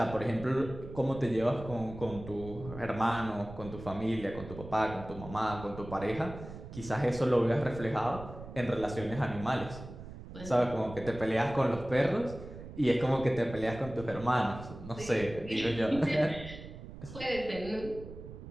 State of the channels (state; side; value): noise; right; rumble, 13 dB below the sound